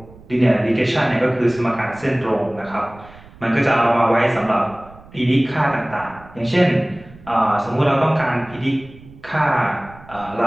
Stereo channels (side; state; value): right; noise; rumble, 22 dB below the sound